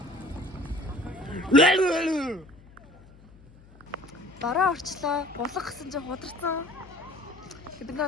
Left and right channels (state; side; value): noise; left; hum, 24 dB below the sound